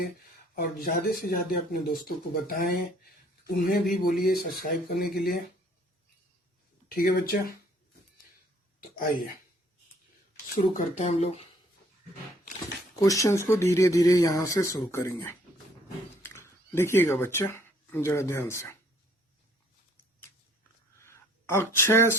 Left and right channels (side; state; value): both; normal; correlation 0.60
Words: और ज्यादा से ज्यादा अपने दोस्तों को बताएं, उन्हें भी बोलिए सब्सक्राइब करने के लिए। ठीक है बच्चा, तो आइए शुरू करते हैं। हम लोग क्वेश्चंस को धीरे धीरे यहां से शुरू करेंगे। देखिएगा बच्चा जरा ध्यान से। Akshay,